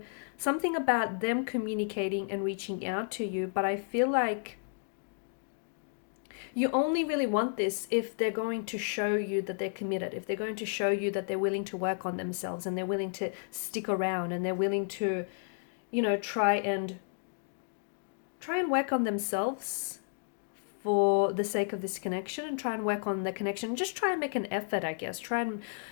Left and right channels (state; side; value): silent; right; digital silence